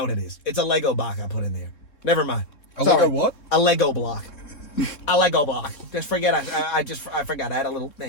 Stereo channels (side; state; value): right; late; 3.8 ms